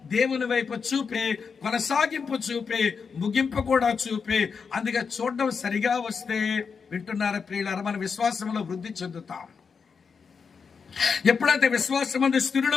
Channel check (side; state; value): right; quieter; 5.7 dB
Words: దేవుని వైపు చూపే, కొనసాగింపు చూపే, ముగింపు కూడా చూపే. అందుకే చూడడం సరిగా వస్తే వింటున్నారా ప్రియులారా, మన విశ్వాసంలో వృద్ధి చెందుతాం. ఎప్పుడైతే విశ్వాసమందు